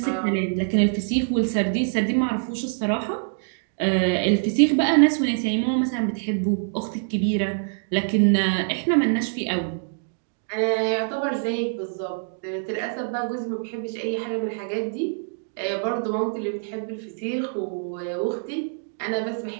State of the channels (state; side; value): silent; left; digital silence